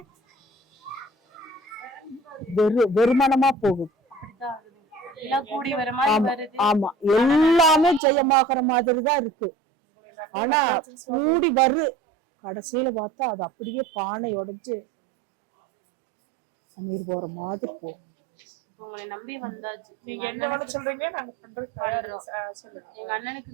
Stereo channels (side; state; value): left; drops out; at 8.0 s